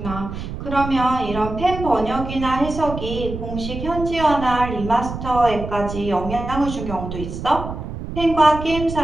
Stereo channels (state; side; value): noise; right; rumble, 8 dB below the sound